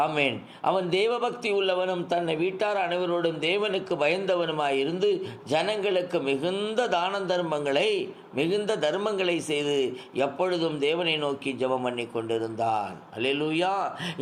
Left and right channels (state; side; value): identical; both; correlation 1.00